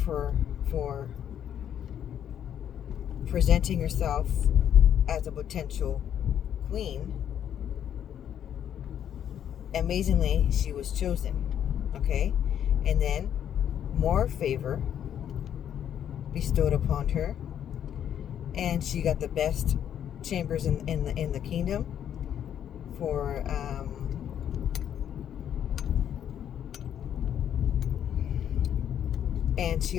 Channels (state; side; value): quieter; right; 9.6 dB